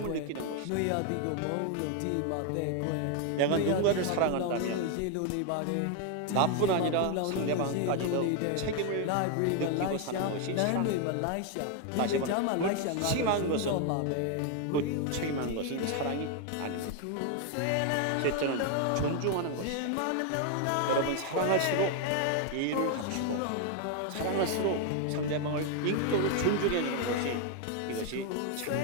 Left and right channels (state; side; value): different; both; correlation 0.01